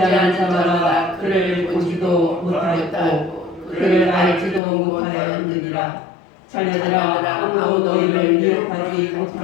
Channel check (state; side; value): drops out; right; at 4.6 s